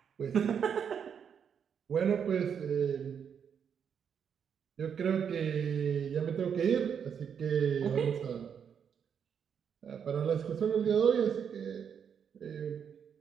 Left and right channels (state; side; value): quieter; left; 7.5 dB